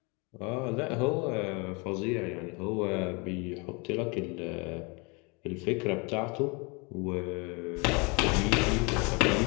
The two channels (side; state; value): right; quieter; 29.9 dB